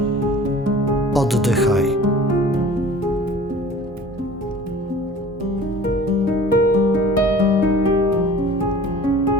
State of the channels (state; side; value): normal; both; correlation 0.44